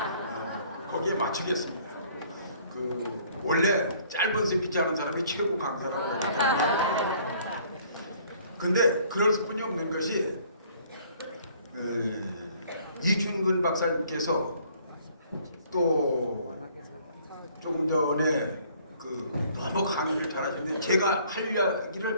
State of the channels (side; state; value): both; inverted; correlation -0.59